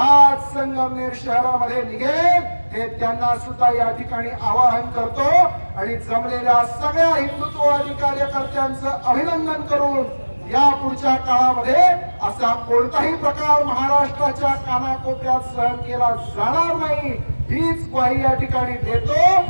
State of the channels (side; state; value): both; inverted; correlation -1.00